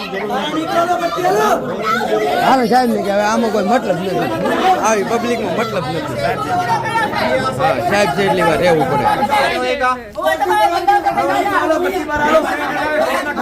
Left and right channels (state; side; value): identical; both; correlation 1.00